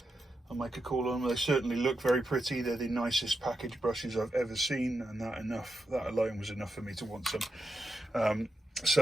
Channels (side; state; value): both; normal; correlation 0.87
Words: I make a call on them. They certainly look very pretty. They're the nicest package brushes I've ever seen, and that alone was enough for me to want some.